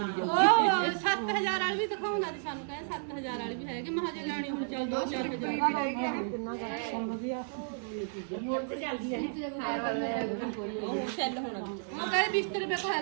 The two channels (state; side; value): silent; left; digital silence